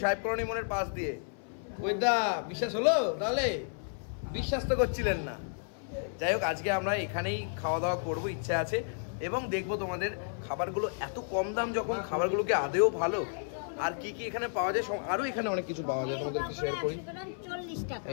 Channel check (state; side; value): silent; right; 56 dB below the other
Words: সাহেব কলোনি মোড়ের পাশ দিয়ে। ওই দা বিশ্বাস হলো তাহলে? বিশ্বাস তো করছিলেন না। যাই হোক, আজকে আমরা এখানেই খাওয়া দাওয়া করবো, ইচ্ছা আছে, এবং দেখবো তোমাদের খাবারগুলো এত কম দাম যখন, খাবারগুলোকে আদেও ভালো, আর কি কি এখানে পাওয়া যায়, আরো এখানে অনেক কিছু পাওয়া যায়, তোমাদেরকে শেয়ার করি।